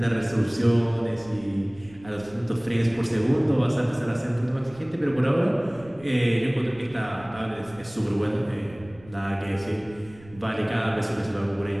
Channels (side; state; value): right; noise; rumble, 22 dB below the sound